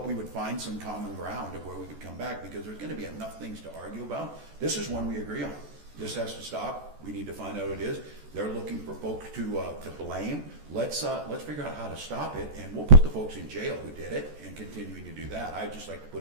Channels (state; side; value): late; left; 14 ms